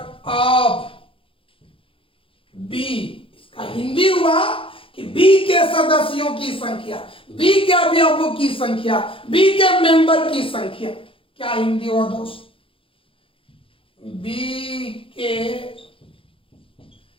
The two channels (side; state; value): right; late; 0.26 ms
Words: बी। इसका हिंदी हुआ कि बी के सदस्यों की संख्या, बी के अवयवों की संख्या, बी के मेंबर की संख्या। क्या हिंदी हुआ दोस्त, बी के